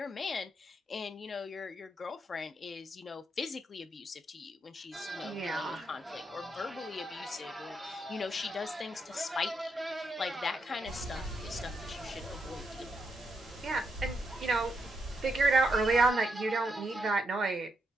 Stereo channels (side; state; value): both; normal; correlation 0.81